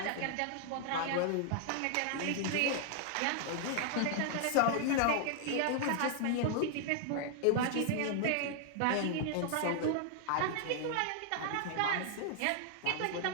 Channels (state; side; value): different; both; correlation 0.00